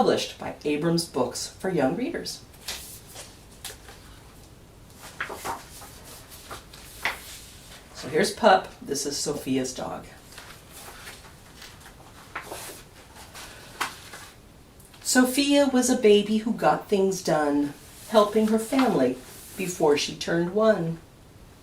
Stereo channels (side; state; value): both; identical; correlation 1.00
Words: by Abrams Books for Young Readers. So here's Pup. This is Sophia's dog. Sophia was a baby who got things done, helping her family before she turned 1.